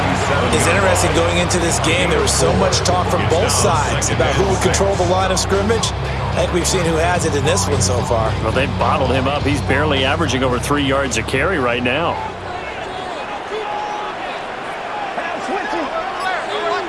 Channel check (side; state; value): both; identical; correlation 1.00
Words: It's interesting going into this game. There was so much talk from both sides about who would control the line of scrimmage. I think we've seen who has it in this one so far. Well, they've bottled him up. He's barely averaging over 3 yards a carry right now.